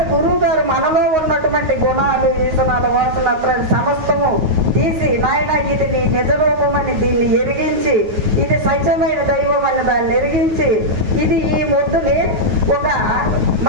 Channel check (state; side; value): late; left; 9.4 ms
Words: గురువు గారు మనలో ఉన్నటువంటి గుణాలు, ఈసనాలు, వాసనలు సమస్తము తీసి నాయన ఇది నీ నిజ రూపమని దీన్ని ఎరిగించి, ఇది సత్యమైన దైవం అని దాన్ని ఎరిగించి, ఇది ఈ ముద్దుని ఒక